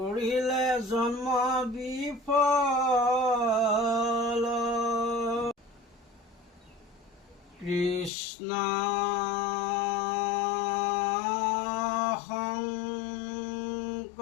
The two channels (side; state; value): right; drops out; at 8.1 s